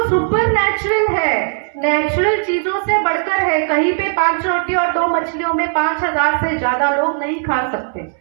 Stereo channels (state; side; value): silent; left; 68 dB below the other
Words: सुपर नेचुरल है, नेचुरल चीजों से बढ़कर है। कहीं पे 5 रोटी और 2 मछलियों में 5000 से ज्यादा लोग नहीं खा सकते,